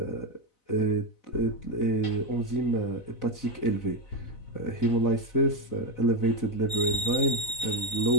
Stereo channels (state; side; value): late; right; 4.0 ms